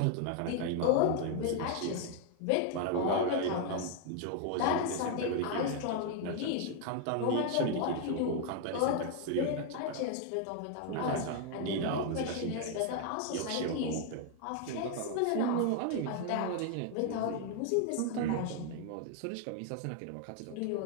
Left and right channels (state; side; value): different; both; correlation 0.00